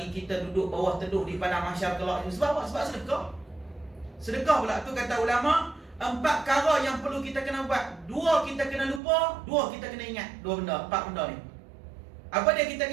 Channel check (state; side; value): drops out; left; at 9.0 s